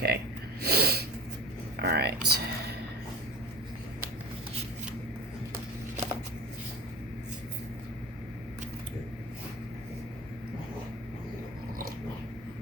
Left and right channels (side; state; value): both; normal; correlation 0.35